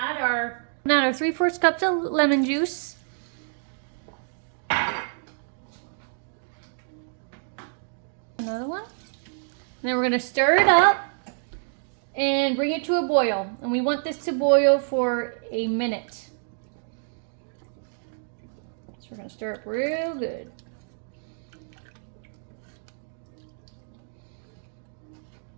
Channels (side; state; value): left; silent; digital silence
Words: our 3/4 cups of lemon juice. Another one. And then we're gonna stir it up and bring it to a boil. And we want this to boil for a minute. So we're gonna stir it real good.